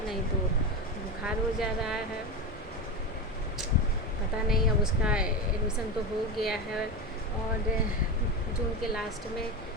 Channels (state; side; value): normal; both; correlation 0.18